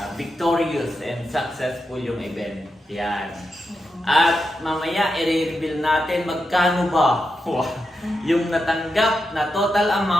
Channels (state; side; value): normal; both; correlation 0.87